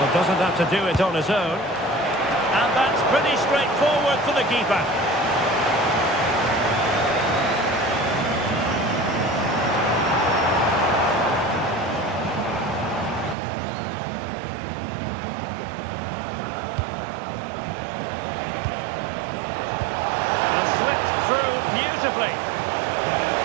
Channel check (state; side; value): drops out; left; at 13.4 s